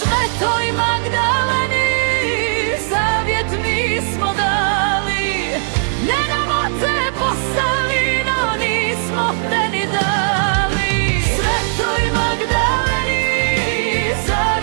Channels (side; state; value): left; silent; digital silence